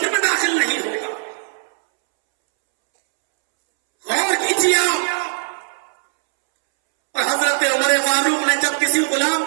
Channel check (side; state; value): left; silent; 66 dB below the other